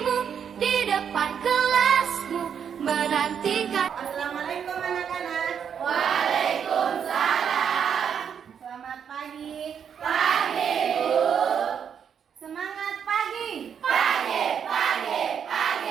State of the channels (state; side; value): quieter; left; 7.7 dB